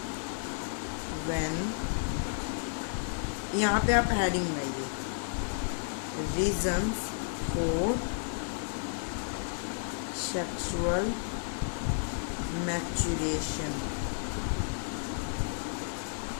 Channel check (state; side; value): silent; right; digital silence